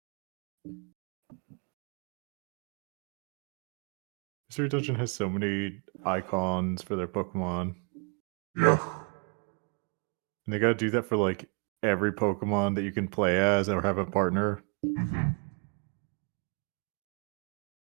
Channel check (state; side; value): quieter; left; 36.7 dB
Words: Mystery Dungeon has so many icons for their Pokemon. Yeah. And they gotta do that for like every Pokemon that you can play as or have a partner. Mm-hmm.